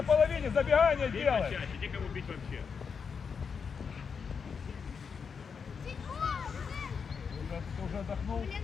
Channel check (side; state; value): right; quieter; 6.0 dB